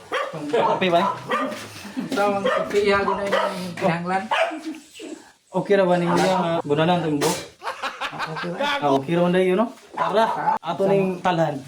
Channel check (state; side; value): identical; both; correlation 1.00